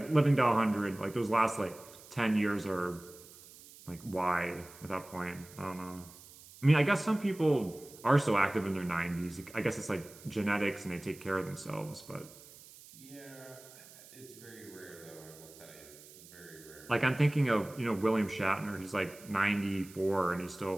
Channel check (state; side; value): noise; right; hiss, 20 dB below the sound